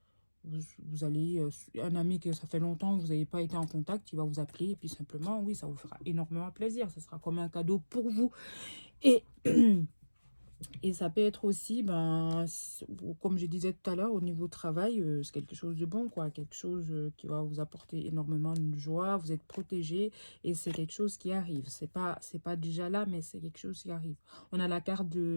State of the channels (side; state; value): both; inverted; correlation -1.00